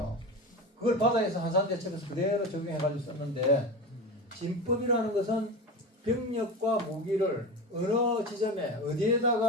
그걸 바다에서 한산대첩에서 그대로 적용해가지고 썼는데 진법이라는 것은 병력과 무기를 어느 지점에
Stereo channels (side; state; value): both; normal; correlation 0.26